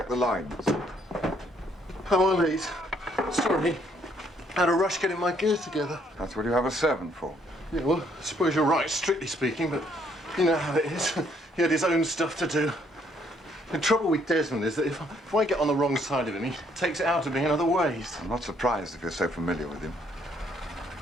the lines. How are these? Sorry. Had a rush getting my gear together. That's what you have a servant for. Yeah, well, I suppose you're right, strictly speaking, but you know how it is. He had his own stuff to do. The trouble with Desmond is that if I get on the wrong side of him, he takes it out of me in other ways. I'm not surprised if you're so familiar with him.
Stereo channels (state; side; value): normal; both; correlation 0.68